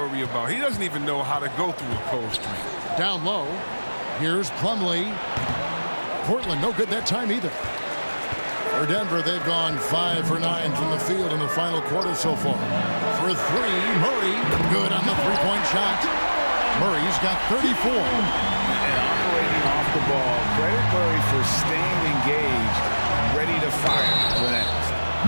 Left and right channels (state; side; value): inverted; both; correlation -1.00